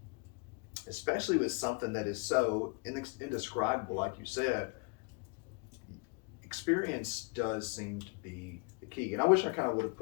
especially with something that is so indescribable, like you said, experience does seem to be the key. And I wish I kind of would have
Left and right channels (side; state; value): right; quieter; 32.4 dB